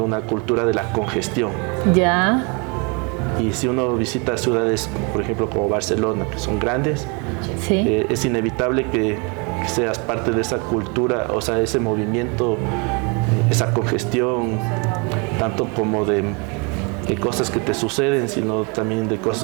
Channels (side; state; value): left; quieter; 32.2 dB